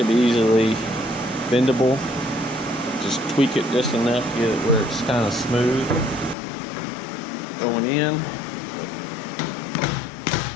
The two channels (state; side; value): drops out; right; at 6.4 s